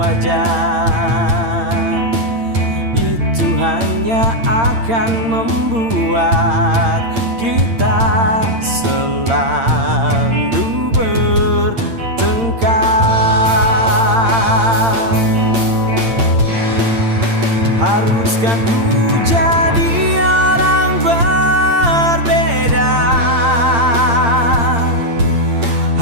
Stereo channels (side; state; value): left; late; 8.8 ms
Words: Itu hanya akan membuat kita selalu bertengkar. Haruskah ku jadi orang berbeda